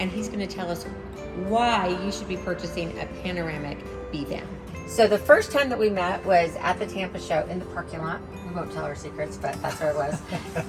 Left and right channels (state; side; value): identical; both; correlation 1.00